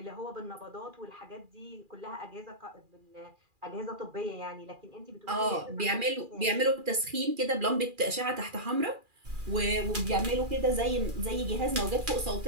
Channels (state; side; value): late; left; 2.4 ms